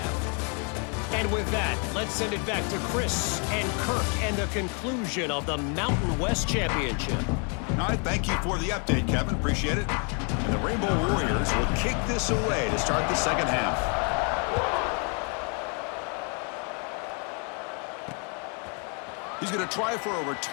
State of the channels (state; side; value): quieter; right; 37.3 dB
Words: And with that, let's send it back to Chris and Kirk and the conclusion of the Mountain West Championship. All right, thank you for the update, Kevin. Appreciate it. And the Rainbow Warriors will kick this away to start the second half. going to try for a